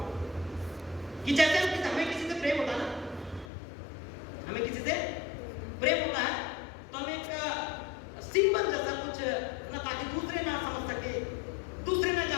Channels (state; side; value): drops out; right; at 3.5 s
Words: कि जैसे हमें किसी से प्रेम होता है ना, हमें किसी से प्रेम होता है तो हम एक सिंबल जैसा कुछ ना, ताकि दूसरे ना समझ सके, दूसरे ना